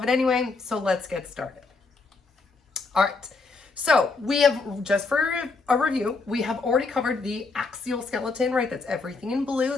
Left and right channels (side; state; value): right; quieter; 4.0 dB